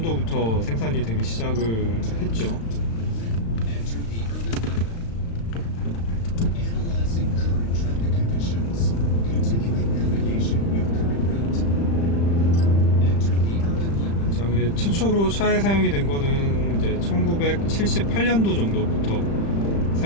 생산이 되기 시작을 했죠. 최초로 차에 사용이 된 거는 이제 1978년도 정도부터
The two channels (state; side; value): late; right; 35 ms